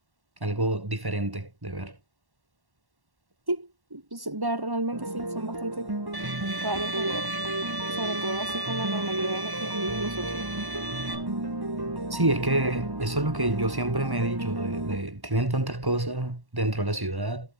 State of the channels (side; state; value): left; late; 1.1 ms